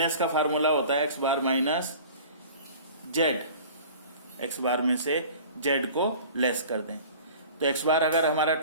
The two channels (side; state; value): both; inverted; correlation -0.43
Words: का फार्मूला होता है x bar minus Z, x बार में से जेड को लेस कर दें। तो x बार अगर हमारा